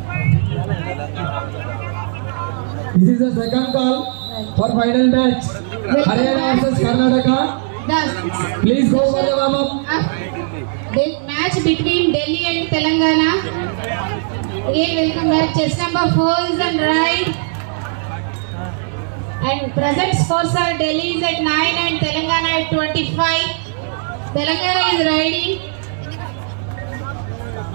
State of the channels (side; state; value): left; silent; digital silence